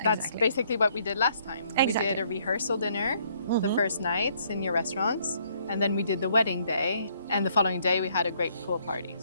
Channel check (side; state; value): both; inverted; correlation -0.67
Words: That's basically what we did last time. Exactly. We did a rehearsal dinner the first night in your restaurants, and then we did the wedding day, and the following day we had a great pool party.